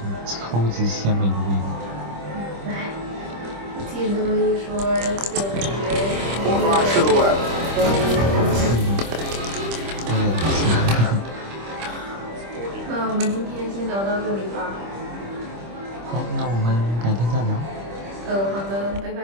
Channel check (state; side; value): late; left; 25 ms